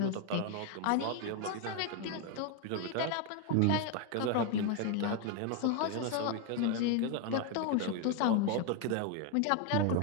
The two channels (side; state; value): both; different; correlation 0.01